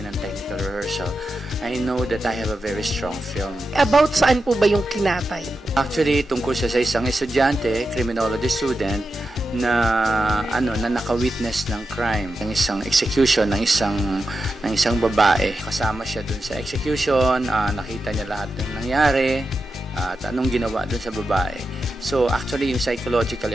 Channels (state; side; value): normal; both; correlation 0.89